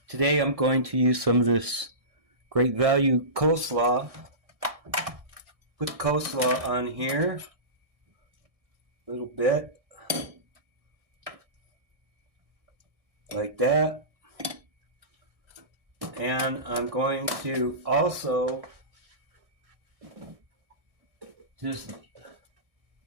today I'm going to use some of this great value coleslaw. Put coleslaw on here a little bit. Like that. And I'm going to also just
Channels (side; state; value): left; late; 1.6 ms